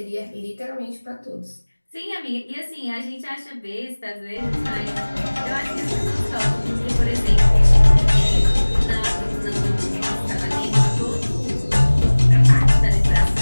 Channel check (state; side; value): inverted; both; correlation -1.00